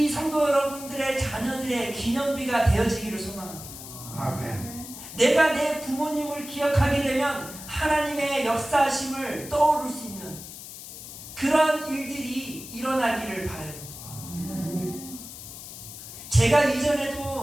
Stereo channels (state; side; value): noise; left; hiss, 13 dB below the sound